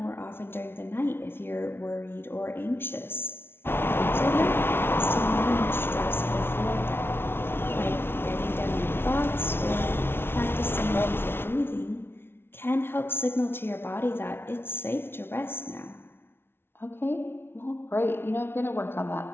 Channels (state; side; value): late; right; 0.11 ms